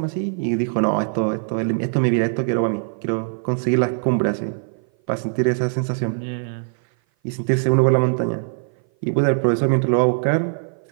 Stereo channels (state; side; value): silent; left; 57 dB below the other